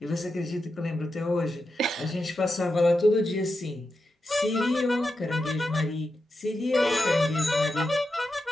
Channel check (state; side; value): normal; both; correlation 0.88